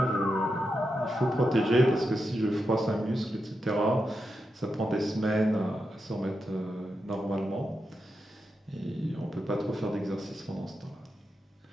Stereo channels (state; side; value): normal; both; correlation 0.87